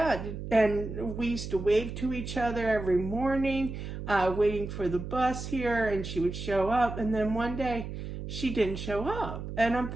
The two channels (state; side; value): noise; right; hum, 8 dB below the sound